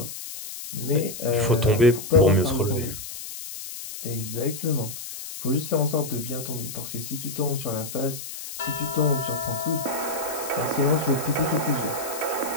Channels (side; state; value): left; noise; hiss, 9 dB below the sound